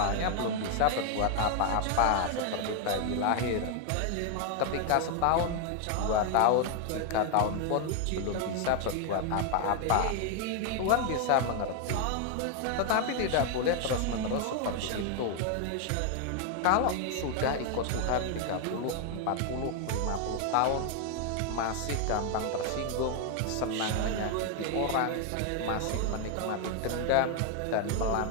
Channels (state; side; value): different; both; correlation 0.00